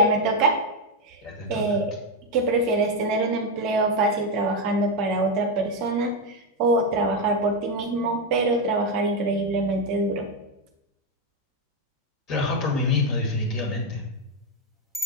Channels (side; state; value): both; normal; correlation 0.06